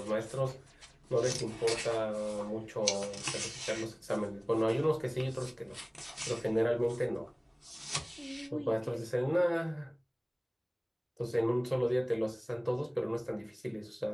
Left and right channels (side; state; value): both; identical; correlation 1.00